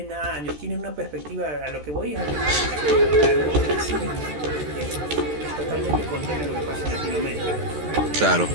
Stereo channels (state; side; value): late; left; 13 ms